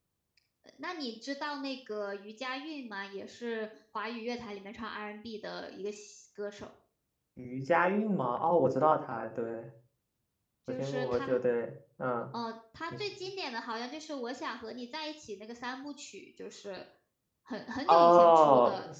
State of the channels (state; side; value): identical; both; correlation 1.00